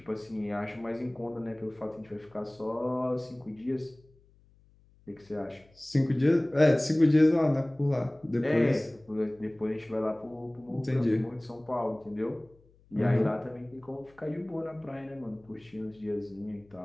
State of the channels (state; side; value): noise; left; hum, 30 dB below the sound